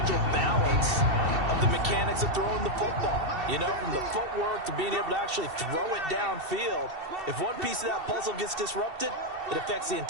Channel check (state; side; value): late; left; 2.7 ms